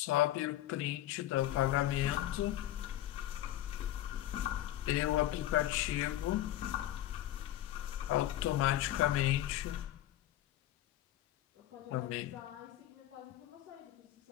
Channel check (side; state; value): right; quieter; 13.6 dB